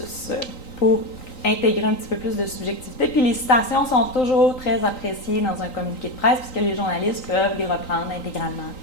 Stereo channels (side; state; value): right; late; 3.9 ms